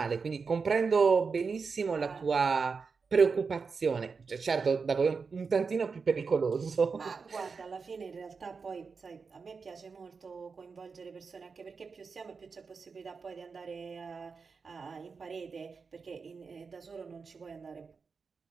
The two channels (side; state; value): left; quieter; 5.1 dB